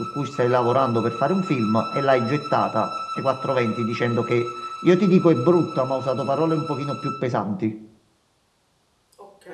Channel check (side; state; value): both; identical; correlation 1.00